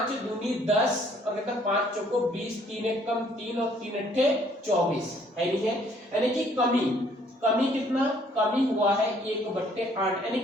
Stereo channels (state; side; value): normal; both; correlation 0.62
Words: दूनी 10 और कहता 5 चौको 20, 3 एकम 3 और 3 अट्ठे 24 है, नहीं है? यानी कि कमी कितना? कमी हुआ है 1/8, यानी